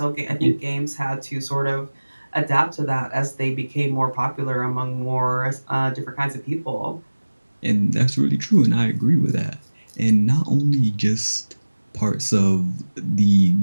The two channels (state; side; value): inverted; both; correlation -1.00